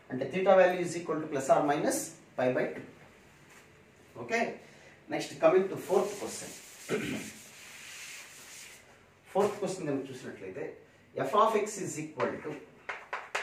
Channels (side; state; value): both; identical; correlation 1.00